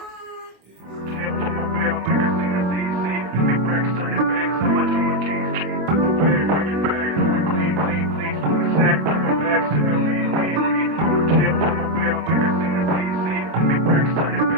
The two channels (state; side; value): late; left; 26 ms